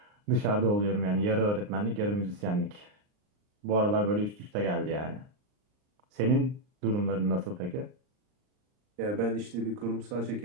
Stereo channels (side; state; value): left; late; 39 ms